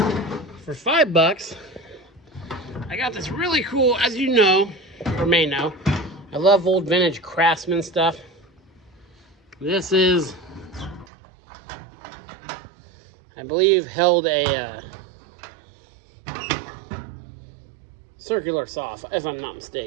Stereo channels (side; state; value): left; drops out; at 11.1 s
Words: For $5, I got this really cool, as you know, or may know, I love old vintage Craftsman stuff. This is, I believe, held a circular saw, if I'm not